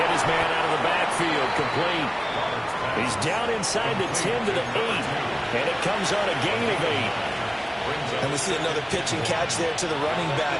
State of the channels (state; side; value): identical; both; correlation 1.00